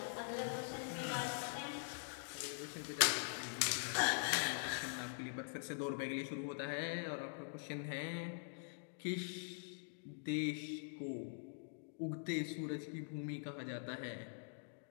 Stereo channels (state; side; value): silent; right; digital silence